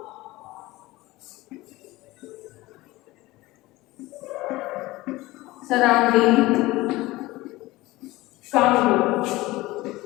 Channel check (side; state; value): right; quieter; 19.4 dB